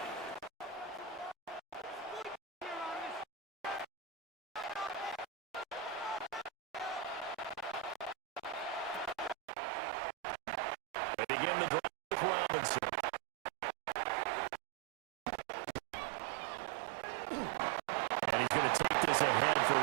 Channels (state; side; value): drops out; left; at 9.3 s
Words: They begin the drive with Robinson. And he's going to take this ahead for